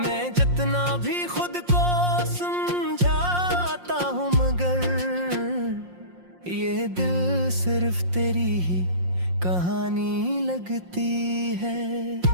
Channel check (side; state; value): left; late; 5.6 ms